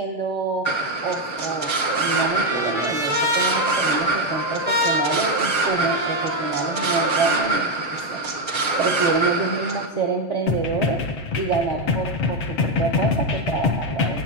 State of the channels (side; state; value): right; late; 7.5 ms